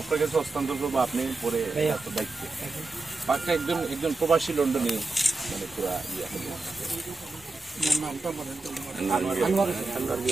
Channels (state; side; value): quieter; left; 3.4 dB